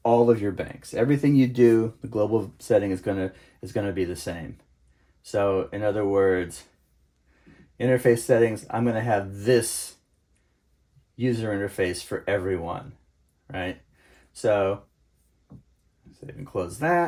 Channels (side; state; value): both; identical; correlation 1.00